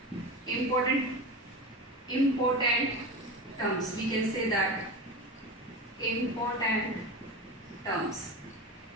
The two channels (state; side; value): normal; both; correlation 0.26